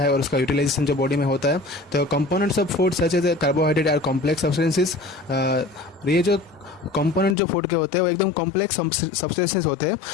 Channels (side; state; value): right; drops out; at 7.4 s